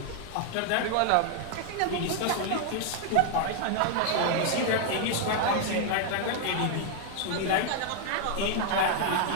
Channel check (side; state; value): both; different; correlation 0.00